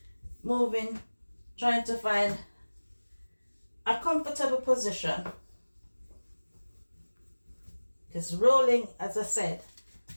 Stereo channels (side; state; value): both; inverted; correlation -1.00